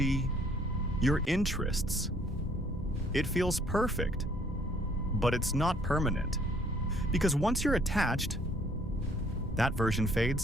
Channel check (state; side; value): normal; both; correlation 0.61